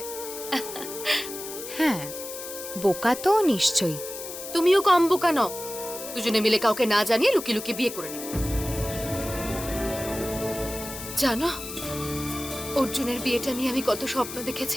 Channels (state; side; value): noise; left; hiss, 10 dB below the sound